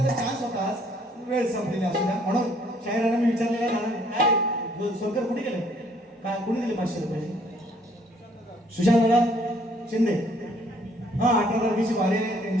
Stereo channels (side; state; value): both; normal; correlation 0.62